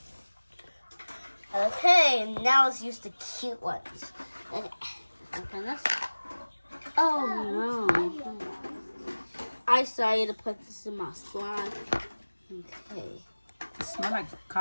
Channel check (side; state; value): both; inverted; correlation -1.00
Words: Okay, now let's use the cute ones. Okay, open this. Oh no. I decided to put this in my slime. Okay. It smells like